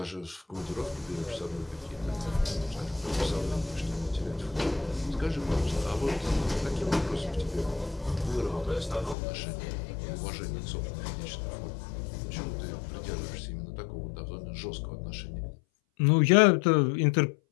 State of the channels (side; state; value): right; drops out; at 9.2 s